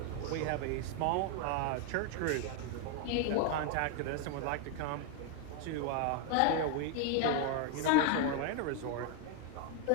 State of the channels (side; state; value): both; different; correlation 0.01